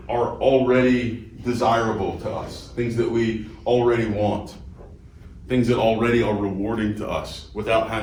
are already desirable to us, things that we already want, things that already are rewarding to us without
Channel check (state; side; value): identical; both; correlation 1.00